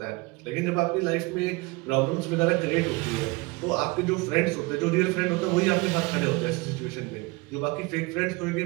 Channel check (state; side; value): quieter; left; 25.2 dB